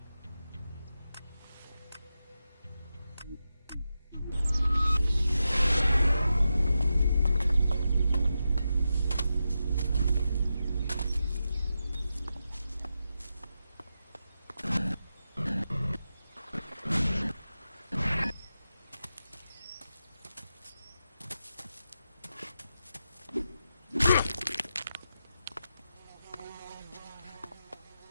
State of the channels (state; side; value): inverted; both; correlation -0.89